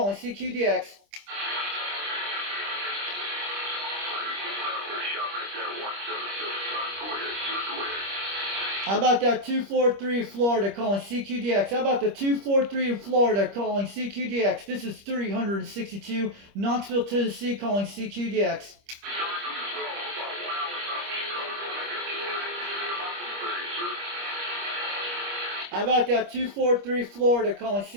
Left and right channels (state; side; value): late; left; 25 ms